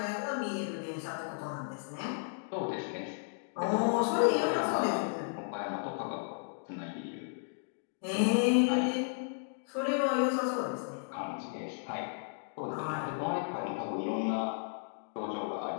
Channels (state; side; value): silent; right; digital silence